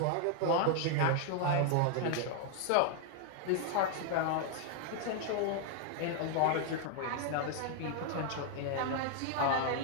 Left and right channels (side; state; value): both; different; correlation 0.00